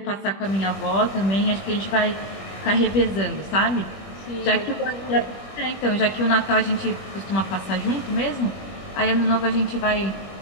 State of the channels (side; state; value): right; late; 21 ms